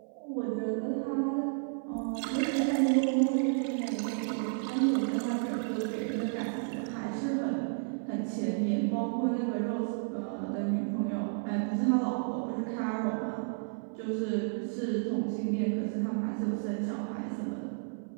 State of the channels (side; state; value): left; silent; 57 dB below the other